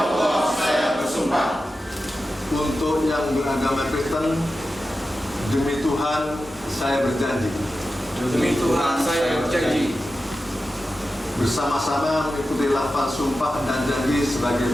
saya bersumpah. Untuk yang beragama Kristen, demi Tuhan saya berjanji. Demi Tuhan saya berjanji. Bersama-sama mengikuti lafaz sumpah dan janji sebagai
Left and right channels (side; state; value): both; normal; correlation 0.92